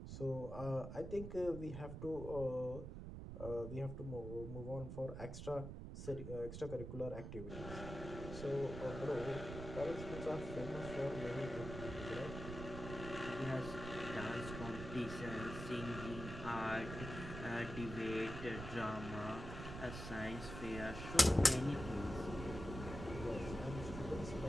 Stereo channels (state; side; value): noise; right; rumble, 8 dB below the sound